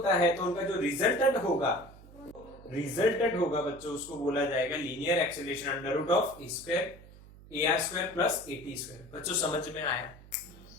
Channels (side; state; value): right; noise; hum, 20 dB below the sound